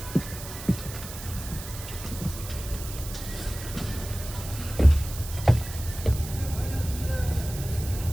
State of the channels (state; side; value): noise; right; hiss, 11 dB below the sound